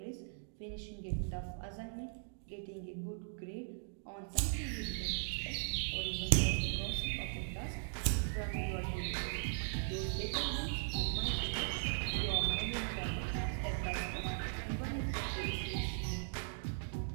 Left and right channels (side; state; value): left; silent; digital silence